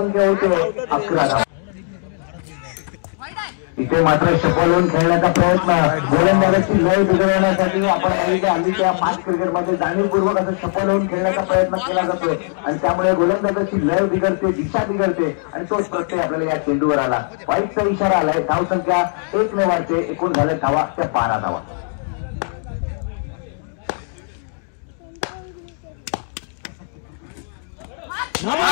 होते 11 धावा. इथे मात्र शपलून खेळण्याचा प्रयत्न. गोलंदाजाची लय बिघडवण्यासाठी आपण आम्ही त्या 5 क्रिकेटमध्ये जाणीवपूर्वक असं शपलून खेळण्याचा प्रयत्न केला जातोय आणि त्यामुळे गोलंदाजाची लय बिघडते, दिशा बिघडते आणि तोच प्रत्यय आपल्याला या चेंडूवर आला. वाईटचा इशारा आलाय. धावसंख्या 1 ने वाढते. एकूण झाले धावा त्या 12 धावा.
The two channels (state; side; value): silent; right; digital silence